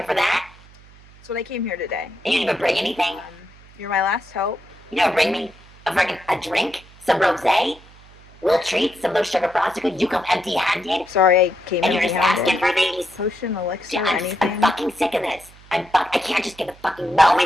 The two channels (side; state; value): right; noise; hum, 24 dB below the sound